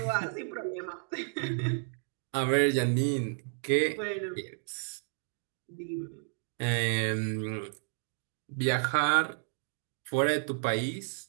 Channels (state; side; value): silent; left; digital silence